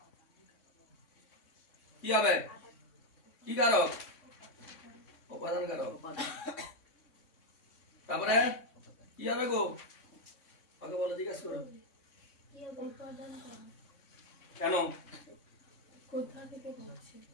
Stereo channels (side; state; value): right; late; 3.6 ms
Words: কি হবে? কি কারক? উপাদান কারক। তারপরে কি হবে গো? ওকে বলো, জিজ্ঞাসা করো কেন?